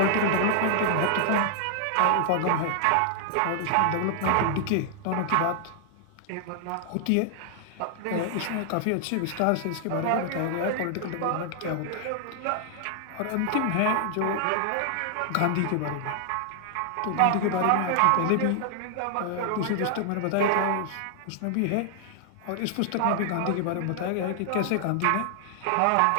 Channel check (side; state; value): both; different; correlation 0.00